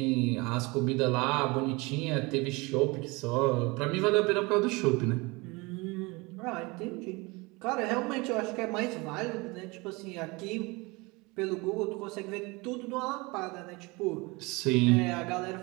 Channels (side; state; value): left; quieter; 25.3 dB